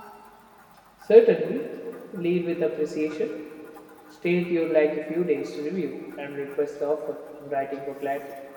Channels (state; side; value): identical; both; correlation 1.00